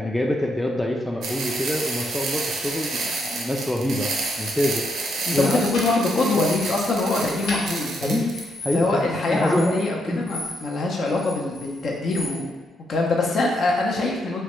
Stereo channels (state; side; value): normal; both; correlation 0.78